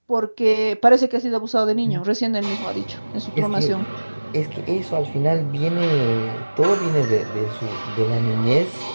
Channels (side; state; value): both; inverted; correlation -1.00